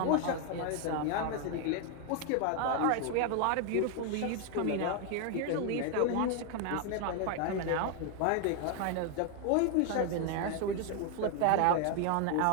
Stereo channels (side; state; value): both; different; correlation 0.01